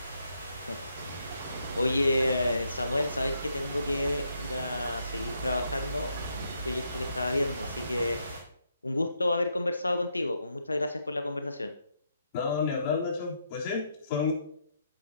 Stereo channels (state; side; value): inverted; both; correlation -0.77